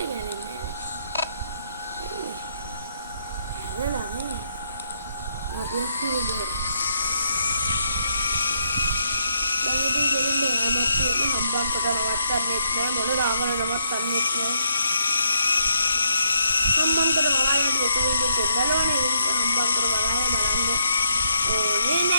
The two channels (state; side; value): inverted; both; correlation -0.76